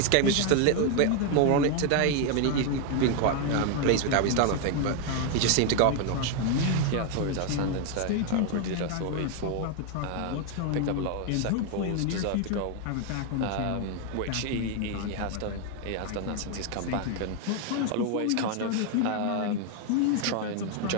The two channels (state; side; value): different; both; correlation 0.01